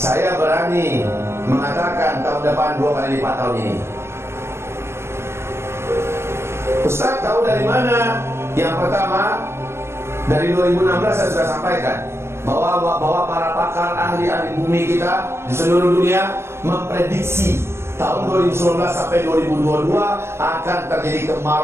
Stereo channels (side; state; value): left; late; 0.12 ms